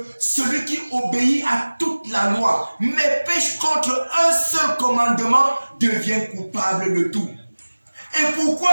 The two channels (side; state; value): both; inverted; correlation -1.00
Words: celui qui obéit à toute la loi, mais pêche contre un seul commandement, devient coupable de tout. Et